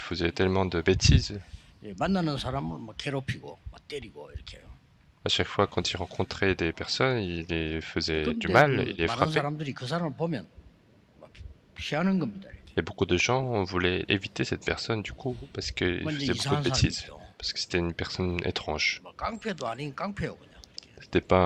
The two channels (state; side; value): identical; both; correlation 1.00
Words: tellement de bêtises. 예, 만나는 사람을 막 괴롭히고 막 때리고 이렇게 해요. À chaque fois, quand il rencontrait des personnes, il les faisait du 그런데 mal, il 그 les 다른 frappait. 사람들이 그 사람을 보면 막 피하는 겁니다. Et beaucoup de gens voulaient éviter cette personne du coup parce qu'il 완전 faisait beaucoup de 이상한 bêtises, 사람이죠. parce que c'était une personne étrange. 뭐 깡패도 아닌 깡패요 그냥. C'était